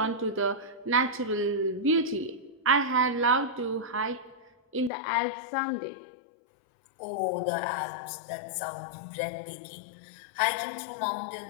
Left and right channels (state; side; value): drops out; right; at 4.9 s